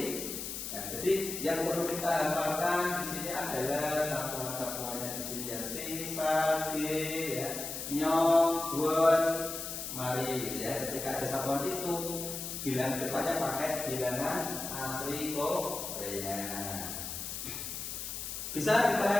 Nah, jadi yang perlu kita hafalkan di sini adalah satuan-satuannya di sini ya, si, sa, ge, ya, nyong, buan, mari. Ya, ketika ada satuan itu, bilangan depannya pakai bilangan asli Korea. Bisa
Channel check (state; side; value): noise; left; hiss, 6 dB below the sound